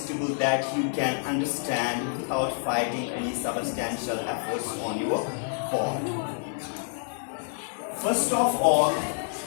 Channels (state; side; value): silent; right; 59 dB below the other